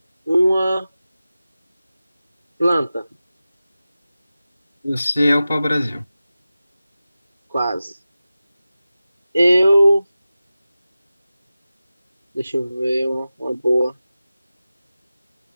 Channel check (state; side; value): inverted; both; correlation -0.95